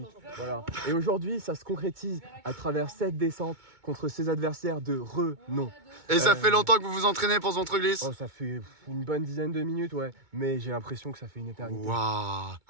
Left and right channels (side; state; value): left; late; 2.2 ms